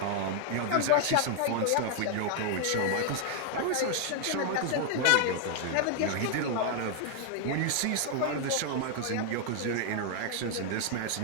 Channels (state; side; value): different; both; correlation 0.00